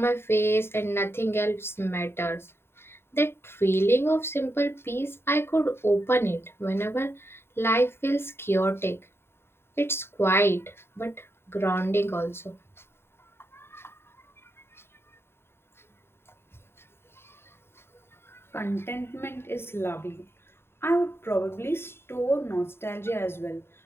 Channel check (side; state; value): right; late; 0.11 ms